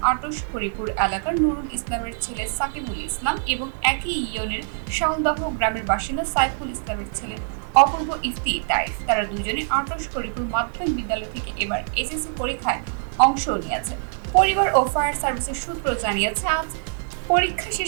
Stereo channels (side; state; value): left; silent; digital silence